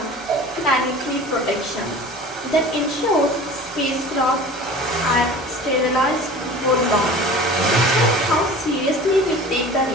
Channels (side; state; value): both; normal; correlation 0.40